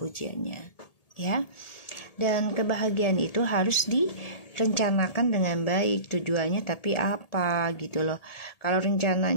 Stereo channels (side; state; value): right; late; 1.8 ms